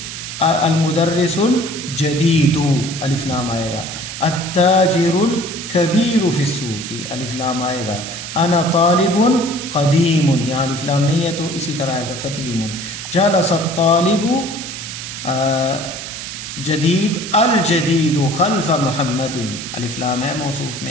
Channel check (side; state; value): right; noise; hiss, 8 dB below the sound